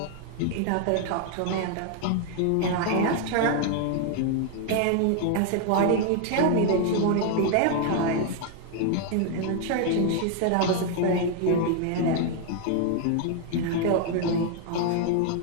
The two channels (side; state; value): both; different; correlation 0.00